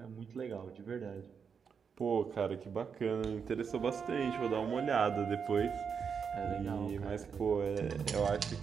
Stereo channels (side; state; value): left; quieter; 6.4 dB